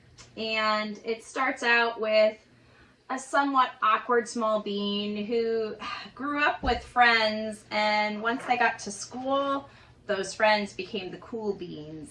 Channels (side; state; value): both; identical; correlation 1.00